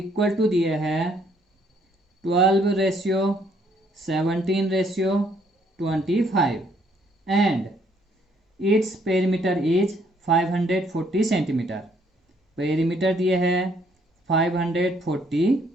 to दिए है 12 ratio 17 ratio 25 and its perimeter is 540 centimetre. Perimeter दिए है 540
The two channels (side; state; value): both; normal; correlation 0.67